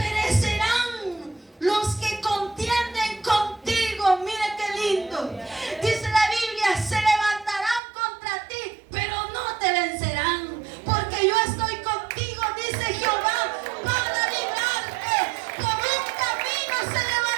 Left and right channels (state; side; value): drops out; left; at 7.8 s